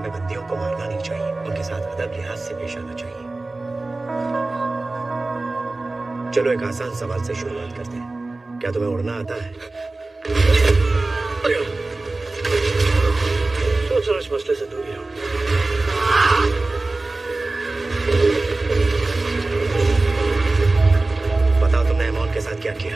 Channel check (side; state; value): left; quieter; 3.2 dB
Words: बंदियों को मारना नहीं चाहिए, उनके साथ अदब लिहाज से पेश आना चाहिए। चलो एक आसान सवाल से शुरुआत करते हैं। क्या तुम्हें उड़ना आता है? सोच रहा इस मसले से दूर रहो। बताओ तुमने अमोन के साथ क्या